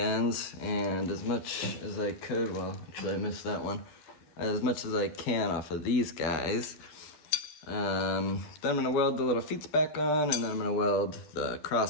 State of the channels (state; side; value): late; right; 12 ms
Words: and as much as I could, well, actually I missed that one, as much as I can off of these guys. Then I'm gonna weld the little feet back on, and then I'm gonna weld the